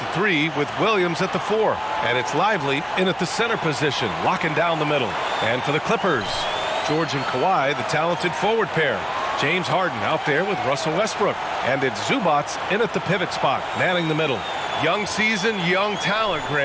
3 with Williams at the 4. And it's Lively in at the center position, locking down the middle. And for the Clippers, George and Kawhi, the talented forward pair. James Harden out there with Russell Westbrook. And it's Zubats in at the pivot spot, manning the middle. Young season, young talent,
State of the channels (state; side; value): identical; both; correlation 1.00